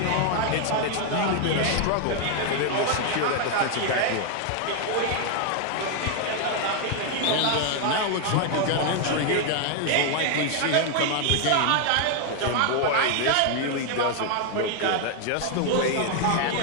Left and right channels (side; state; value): both; different; correlation 0.00